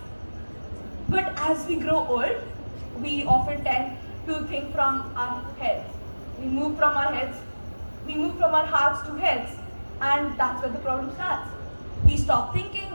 But as we grow old, we often tend to think from our heads. We move from our hearts to heads, and that's where the problem starts. We stop thinking,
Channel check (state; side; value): inverted; both; correlation -1.00